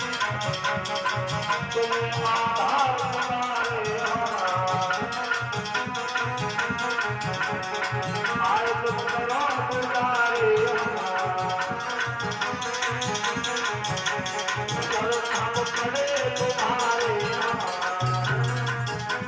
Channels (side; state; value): both; identical; correlation 1.00